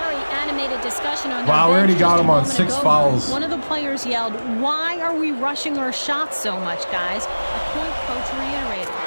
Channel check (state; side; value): inverted; both; correlation -1.00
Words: animated discussion on their Wow, we already bench got just him a on moment 6 ago. fouls. One of the players yelled, "Why are we rushing our shots so much, guys?" A point coach reiterated.